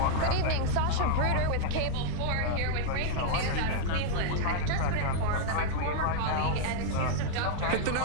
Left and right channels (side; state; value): both; different; correlation -0.01